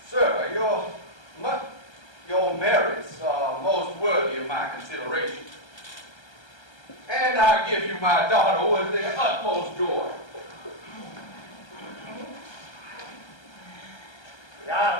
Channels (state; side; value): late; right; 1.3 ms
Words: Sir, your merits are most worthy of my consideration. And I give you my daughter with the utmost joy. The